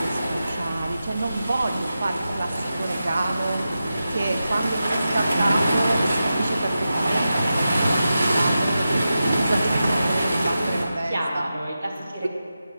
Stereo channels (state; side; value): inverted; both; correlation -0.91